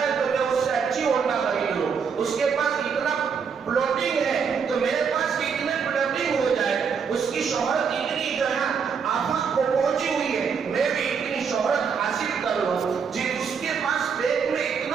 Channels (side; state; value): left; quieter; 6.3 dB